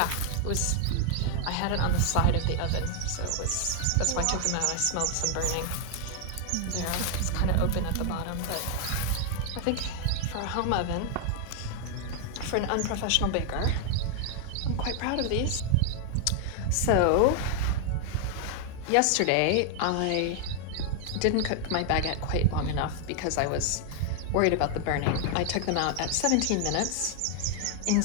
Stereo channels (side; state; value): both; different; correlation 0.00